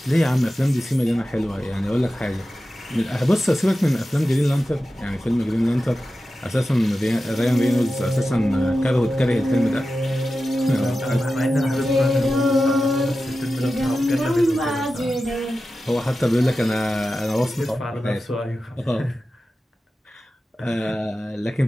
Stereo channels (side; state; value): both; normal; correlation 0.93